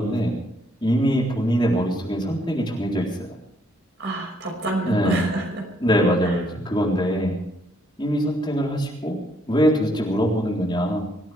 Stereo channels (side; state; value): both; normal; correlation 0.70